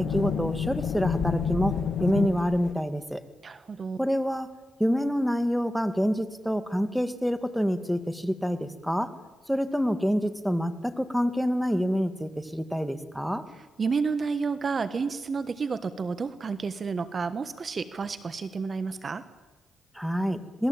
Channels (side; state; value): both; normal; correlation 0.92